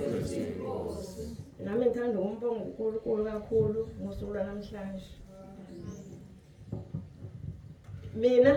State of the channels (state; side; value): identical; both; correlation 1.00